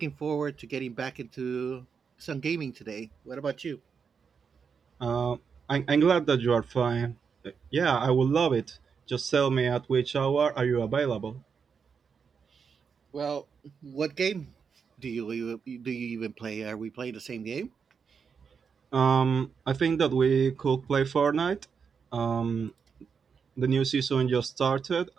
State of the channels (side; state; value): left; quieter; 6.1 dB